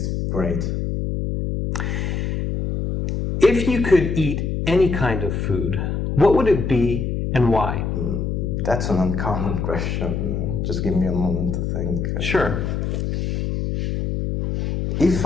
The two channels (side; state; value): left; noise; hum, 1 dB below the sound